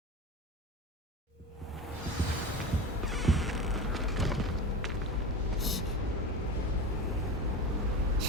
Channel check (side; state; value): both; normal; correlation 0.27